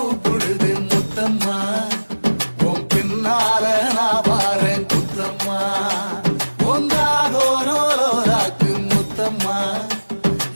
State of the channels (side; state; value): both; inverted; correlation -1.00